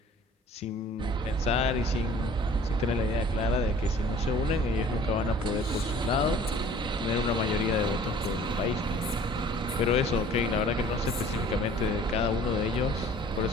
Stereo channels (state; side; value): normal; both; correlation 0.50